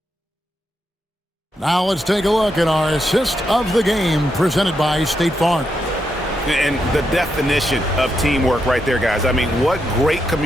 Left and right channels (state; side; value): normal; both; correlation 0.83